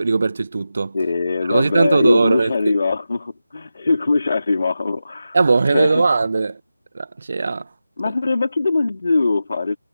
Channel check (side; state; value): both; inverted; correlation -0.91